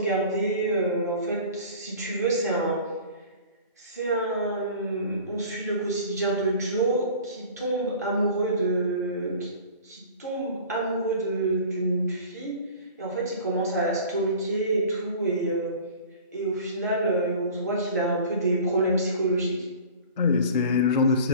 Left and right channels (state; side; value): inverted; both; correlation -0.42